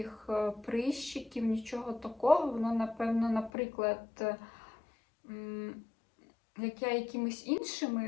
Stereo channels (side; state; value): right; drops out; at 3.5 s